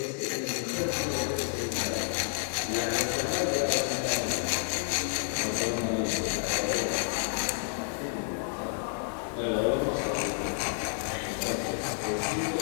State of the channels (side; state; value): right; silent; 58 dB below the other